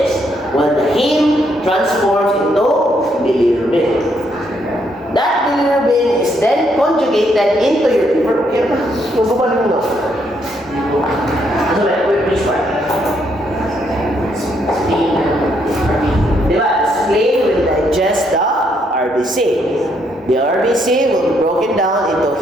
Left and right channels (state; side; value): normal; both; correlation 0.73